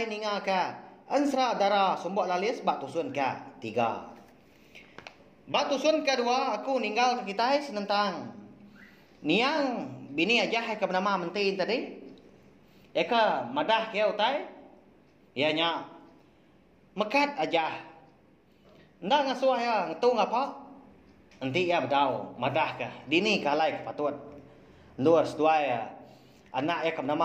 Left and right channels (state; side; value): identical; both; correlation 1.00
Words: ninga ke ansra darah sumbok lalis bak tusun ke 3. Bak tusun kedua aku ninggal ke kita senentang. Niang bini aja ke bernama mentin tadi. Eka madah ke utai ya nya mekat aja ndak ngasuh ya ngetung apa nanti ya bedau madah ke dini kalai ke patut luar sedua ya anak ya ke